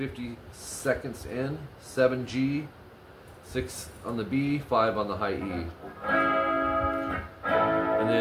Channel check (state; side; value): identical; both; correlation 1.00